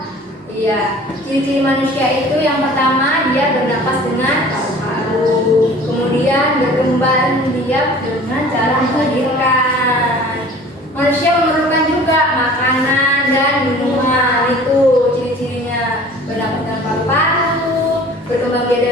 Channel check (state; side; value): normal; both; correlation 0.46